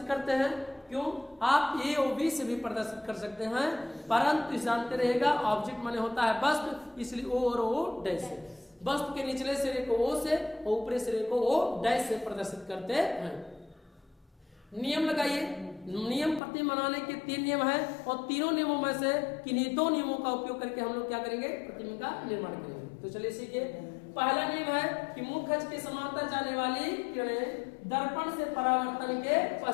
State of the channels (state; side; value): drops out; right; at 16.4 s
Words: करते हैं। क्यों? आप ए और बी से भी प्रदर्शित कर सकते हैं, परंतु जानते रहेगा ऑब्जेक्ट माने होता है वस्तु, इसलिए ओ और ओ डैश से। वस्तु के निचले सिरे को ओ से और ऊपरी सिरे को ओ डैश से प्रदर्शित करते हैं। नियम लगाइए। नियम प्रतिबिंब बनाने के 3 नियम है, और तीनों नियमों में से किन्हीं 2 नियमों का उपयोग करके हम लोग क्या करेंगे? प्रतिबिंब का निर्माण करेंगे। तो चलिए सीखिए। पहला नियम है कि मुख्य अक्ष के समांतर जाने वाली किरणें दर्पण से परावर्तन के